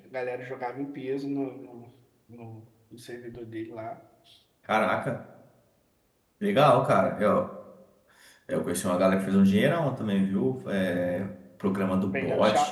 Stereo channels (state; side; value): identical; both; correlation 1.00